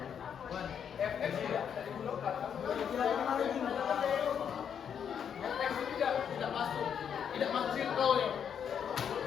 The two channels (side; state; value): right; quieter; 8.0 dB